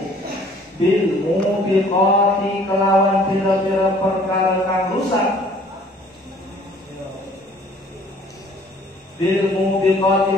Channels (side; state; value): both; normal; correlation 0.55